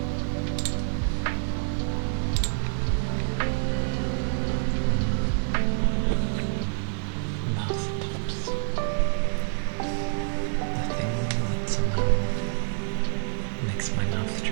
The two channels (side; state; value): left; silent; 60 dB below the other